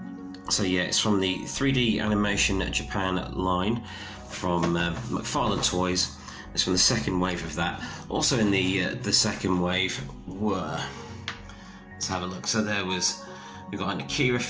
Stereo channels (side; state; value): both; identical; correlation 1.00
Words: So yeah, it's from the 3D Animation Japan line from McFarlane Toys. It's from the second wave of that. Also in the second wave were, let's have a look. So we've got an Akira